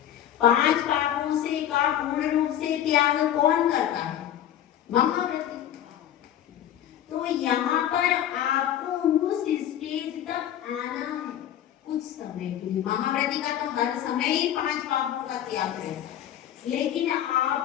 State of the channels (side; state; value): right; quieter; 10.9 dB